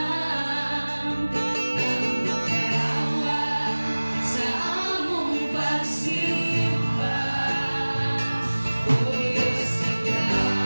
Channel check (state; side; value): inverted; both; correlation -1.00